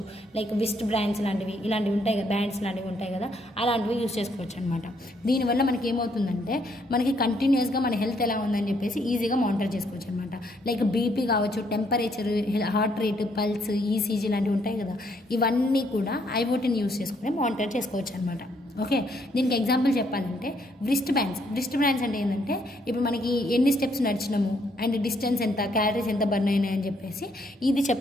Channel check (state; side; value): normal; both; correlation 0.71